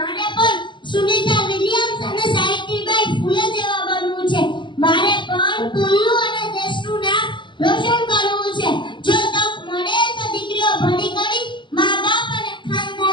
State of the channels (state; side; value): late; right; 0.23 ms